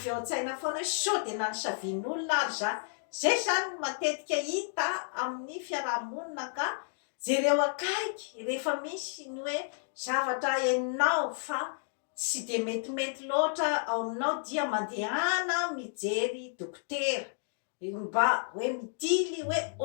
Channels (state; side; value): silent; right; digital silence